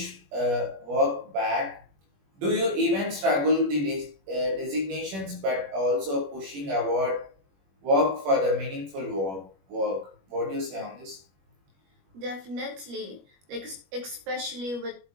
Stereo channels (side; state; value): left; late; 21 ms